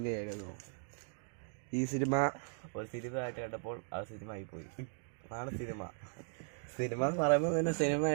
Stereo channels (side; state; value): left; silent; 53 dB below the other